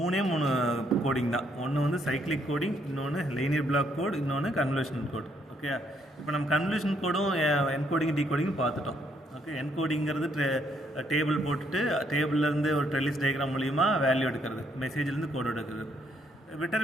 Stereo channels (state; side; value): normal; both; correlation 0.71